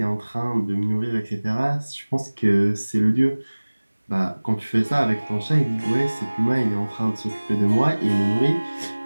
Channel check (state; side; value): inverted; both; correlation -1.00